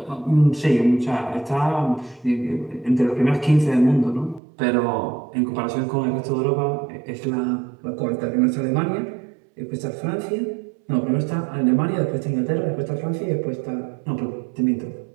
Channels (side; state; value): left; drops out; at 4.4 s